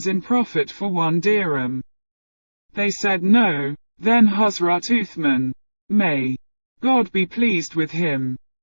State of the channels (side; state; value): both; inverted; correlation -1.00